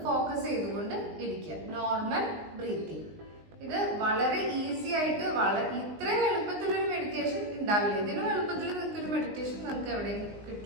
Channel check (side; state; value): left; late; 19 ms